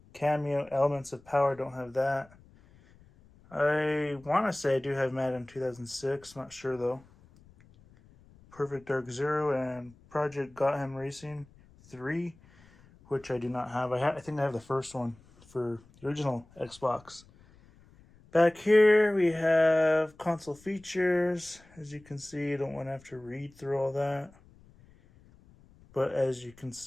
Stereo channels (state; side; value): noise; left; rumble, 26 dB below the sound